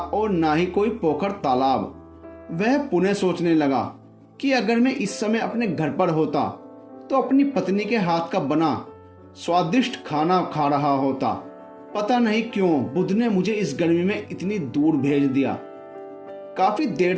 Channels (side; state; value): both; identical; correlation 1.00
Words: ना ही कोई पोखर तालाब। वह पुनः सोचने लगा कि अगर मैं इस समय अपने घर पर होता तो अपनी पत्नी के हाथ का बना स्वादिष्ट खाना खा रहा होता। पता नहीं क्यों बुद्ध ने मुझे इस गर्मी में इतनी दूर भेज दिया। काफी देर